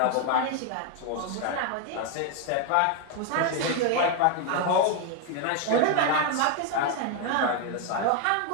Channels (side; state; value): both; different; correlation 0.01